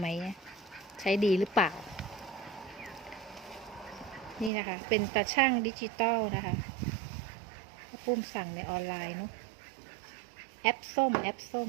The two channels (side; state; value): left; drops out; at 4.5 s